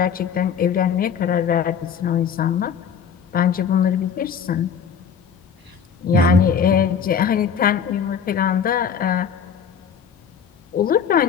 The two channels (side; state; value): right; quieter; 7.1 dB